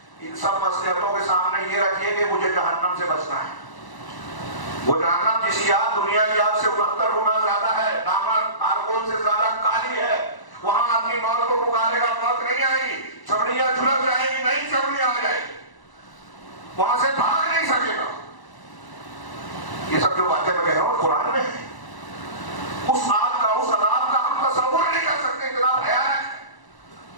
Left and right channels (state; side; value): late; right; 1.0 ms